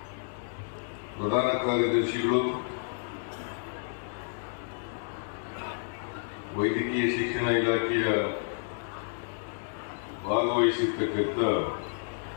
ಪ್ರಧಾನ ಕಾರ್ಯದರ್ಶಿಗಳು, ವೈದ್ಯಕೀಯ ಶಿಕ್ಷಣ ಇಲಾಖೆಯ ಭಾಗವಹಿಸಿರ್ತಕ್ಕಂಥ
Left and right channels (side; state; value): right; silent; digital silence